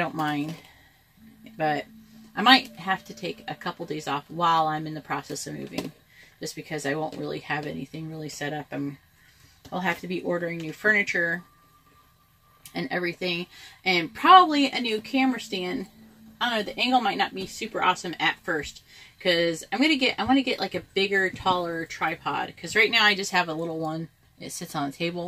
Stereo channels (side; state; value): both; identical; correlation 1.00